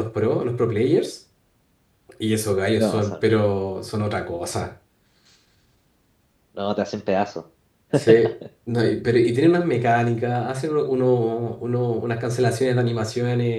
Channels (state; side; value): identical; both; correlation 1.00